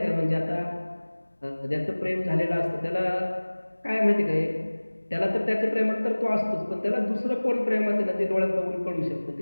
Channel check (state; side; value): inverted; both; correlation -1.00